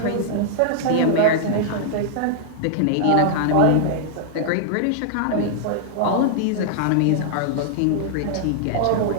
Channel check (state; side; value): different; both; correlation -0.01